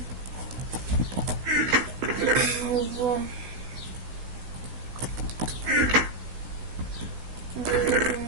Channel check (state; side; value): late; left; 16 ms